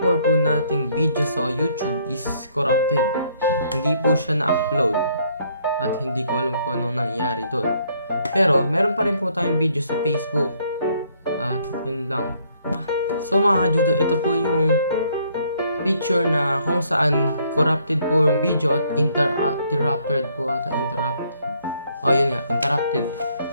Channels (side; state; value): both; inverted; correlation -0.67